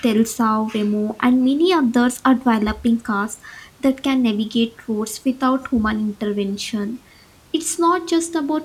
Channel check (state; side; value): identical; both; correlation 1.00